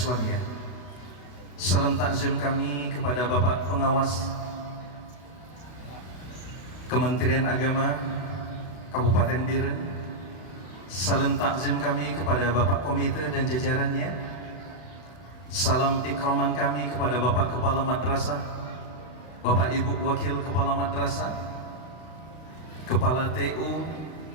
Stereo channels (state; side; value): late; right; 32 ms